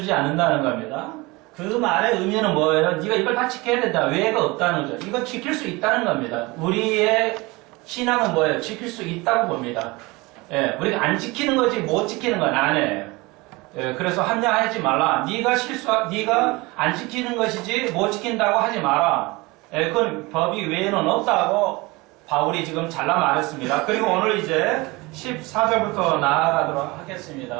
않는다는 겁니다. 그 말의 의미는 뭐예요? 네가 이걸 다 지켜야 된다. 외가 없다는 거죠. 이거 지킬 수 있다는 겁니다. 우리의 신앙은 뭐예요? 지킬 수 있다고 봅니다. 우리가 안 지키는 거지 못 지키는 건 아니에요. 그래서 합리화하지 말라. 네가 안 지키는 것이지 못 지킨다고 하지 마라. 그건 법이 외에는 없다고 바울이 지금 잘라 말했습니다. 그리고 오늘 이제 14절부터 나아가도록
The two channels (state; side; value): quieter; left; 23.6 dB